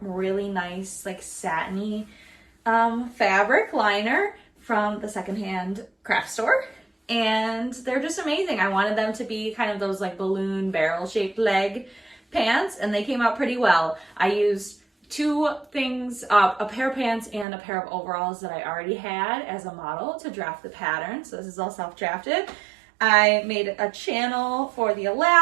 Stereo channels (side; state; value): left; drops out; at 17.4 s